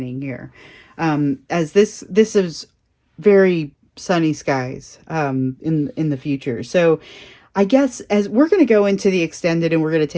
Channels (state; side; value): identical; both; correlation 1.00